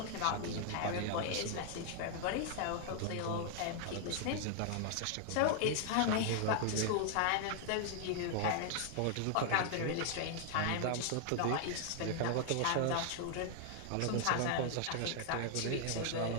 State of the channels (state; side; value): different; both; correlation 0.00